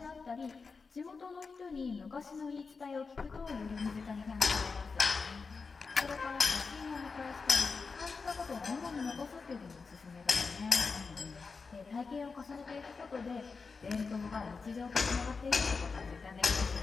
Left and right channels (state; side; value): quieter; right; 4.7 dB